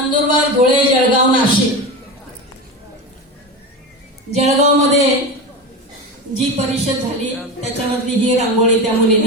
धुळे, जळगाव, नाशिक. जळगावमध्ये जी परिषद झाली त्याच्यामधली ही रांगोळी, त्या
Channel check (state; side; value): normal; both; correlation 0.23